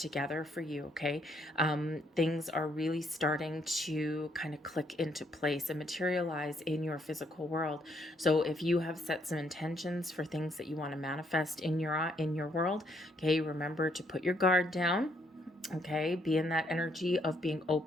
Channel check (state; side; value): normal; both; correlation 0.71